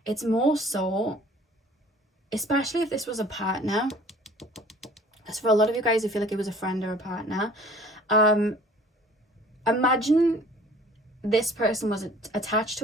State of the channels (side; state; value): both; normal; correlation 0.50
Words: It's more so, especially if this was a partner, as for a lot of you guys who feel like it was a friend or a partner, imagine this person was attached